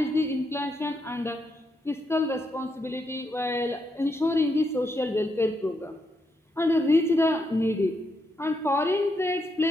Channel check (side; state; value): both; normal; correlation 0.80